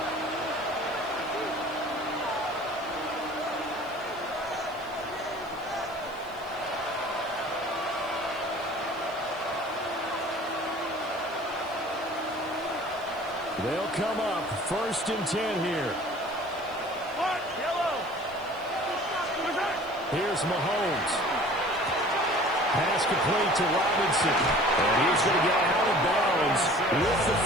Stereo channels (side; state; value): right; noise; hiss, 26 dB below the sound